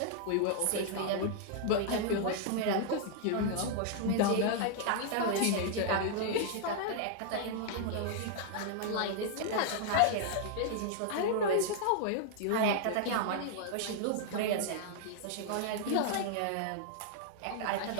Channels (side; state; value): both; different; correlation 0.00